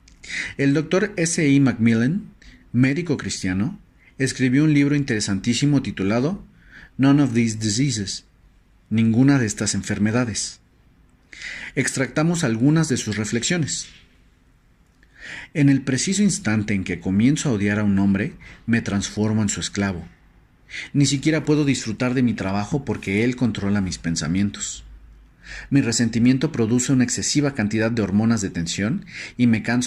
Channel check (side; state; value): both; identical; correlation 1.00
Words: El Dr. S. E. Macmillan, médico cristiano, escribió un libro interesantísimo titulado None of These Diseases, ninguna de estas enfermedades. Extractamos algunas de sus reflexiones. En el preciso instante en que comienzo a odiar a un hombre, me transformo en su esclavo. Ni siquiera puedo disfrutar de mi trabajo porque él controla mis pensamientos. Mi resentimiento produce una excesiva cantidad de hormonas de tensión y me